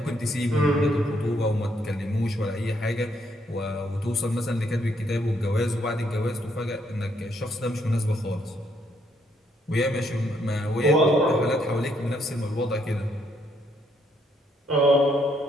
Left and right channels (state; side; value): normal; both; correlation 0.72